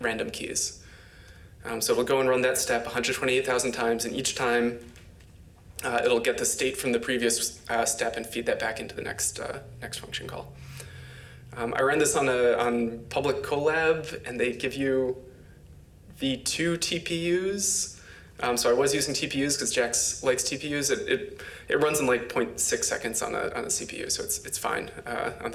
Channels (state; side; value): identical; both; correlation 1.00